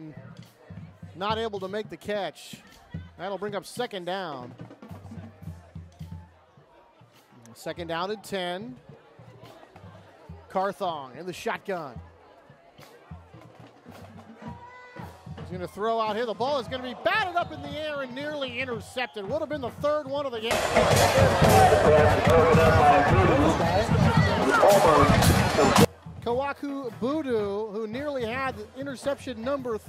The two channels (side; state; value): both; identical; correlation 1.00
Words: not able to make the catch. That'll bring up second down. Second down and 10. Carthong in the shotgun. He's going to throw out here. The ball is going to be batted up in the air and nearly intercepted. Would have been the third one of the game. Kawaku Budu, who nearly had interception number